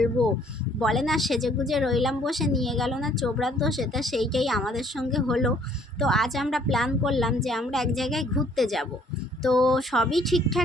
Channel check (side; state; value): both; normal; correlation 0.61